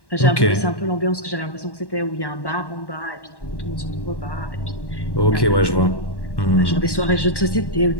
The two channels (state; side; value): late; right; 1.1 ms